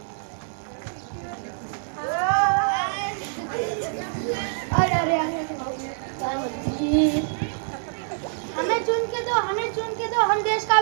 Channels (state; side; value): silent; left; 61 dB below the other